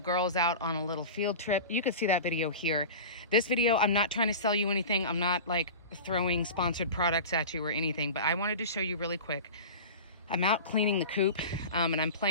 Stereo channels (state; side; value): inverted; both; correlation -0.32